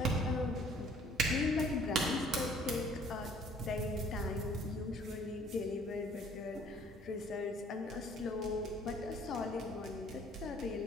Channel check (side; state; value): both; normal; correlation 0.56